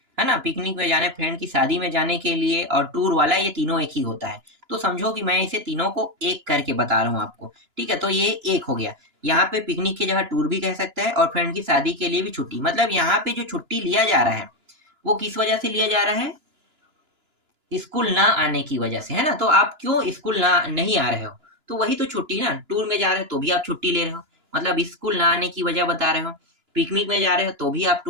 है ना, पिकनिक में जाने, फ्रेंड की शादी में जाने के लिए, और टूर वाला, ये तीनों एक ही होता है। तो समझो कि मैं इसे तीनों को एक करके बता रहा हूँ आपको, ठीक है। तो ये एक हो गया, यहाँ पे पिकनिक की जगह टूर भी कह सकता है, और फ्रेंड की शादी के लिए भी छुट्टी। मतलब यहाँ पे जो छुट्टी लिया जा रहा है वो किस वजह से लिया जा रहा है, स्कूल ना आने की वजह से, है ना। तो आप क्यों स्कूल ना नहीं आ रहे हो, तो वही तो छुट्टी ना। टूर में जा रहे हो तो भी आप छुट्टी ले रहे हो, मतलब स्कूल ना आने की वजह बता रहे हो। पिकनिक में जा रहे हो तो भी आप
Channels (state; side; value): late; left; 2.9 ms